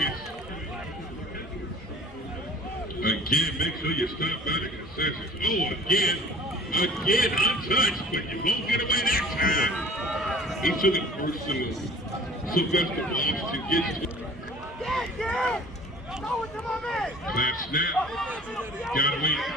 Again, make sure you stop by the concessions. Oh, again untouched, but you won't get away that time. He took it personal. Sylvester Washington gets to it. Clap snap. Got away. And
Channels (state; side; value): normal; both; correlation 0.48